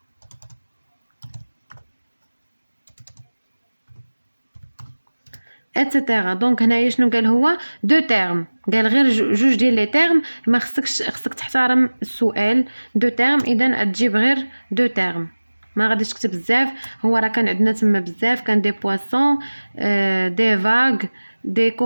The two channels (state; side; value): inverted; both; correlation -1.00